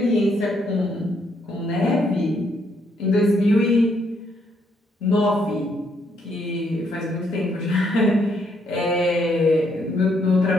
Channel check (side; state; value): both; normal; correlation 0.73